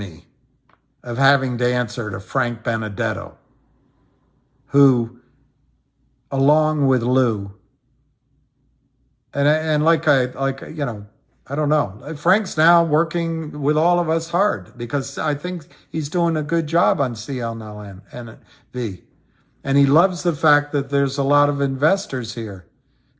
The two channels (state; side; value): identical; both; correlation 1.00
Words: of having to answer to Frank Benedetto, who, along with Lou, and I don't know. Frank's now working with all of us hard because I think he's doing a good job on CNLV. And he loves the fact that there's a lot of investors here